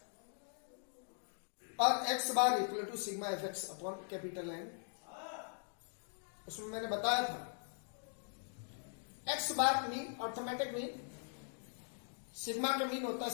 और x bar equal to sigma fx upon capital N। उसमें मैंने बताया था x bar mean arithmetic mean, sigma का मीन होता है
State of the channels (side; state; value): right; silent; digital silence